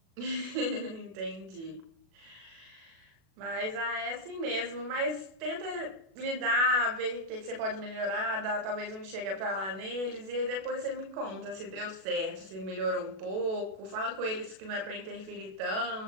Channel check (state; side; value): late; left; 37 ms